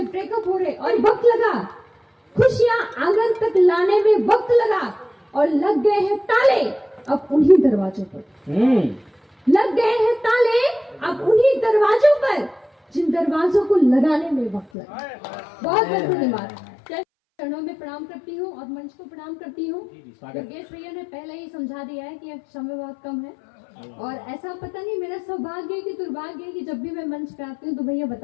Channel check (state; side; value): drops out; right; at 14.7 s